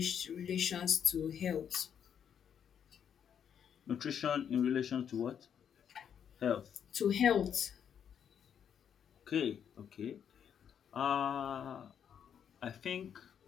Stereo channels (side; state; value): right; quieter; 8.3 dB